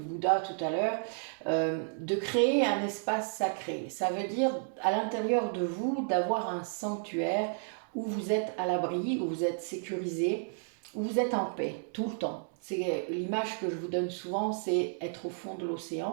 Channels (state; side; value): silent; left; 56 dB below the other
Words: tout à l'heure, de créer un espace sacré. Ça veut dire à l'intérieur de vous d'avoir un sanctuaire où vous êtes à l'abri, où vous êtes sécurisé, où vous êtes en paix tout le temps. C'est l'image que je vous donne souvent, c'est être au fond de